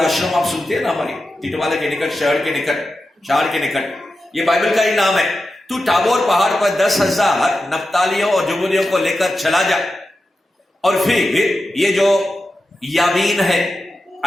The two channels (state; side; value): normal; both; correlation 0.91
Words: आप सुनते हैं ना, हमारी टिटवाला के निकट, शहर के निकट, ये बाइबल का ही नाम है। तू टाबोर पहाड़ पर 10,000 नप्तालियों और जुबूलियों को लेकर चला जा, और फिर ये जो याबीन है